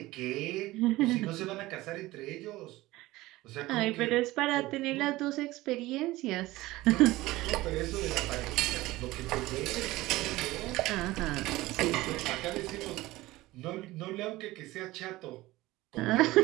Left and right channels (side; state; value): left; quieter; 18.5 dB